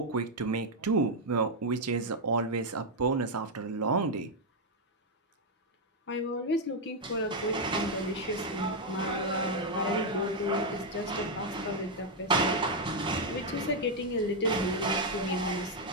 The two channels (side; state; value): both; normal; correlation 0.00